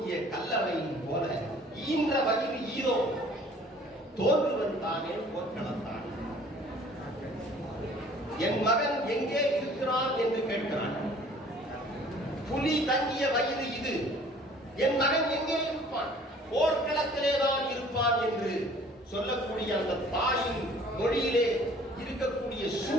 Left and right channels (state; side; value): normal; both; correlation 0.53